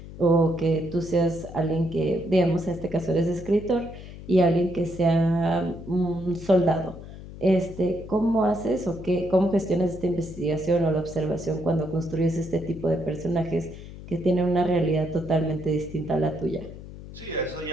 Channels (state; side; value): noise; left; hum, 14 dB below the sound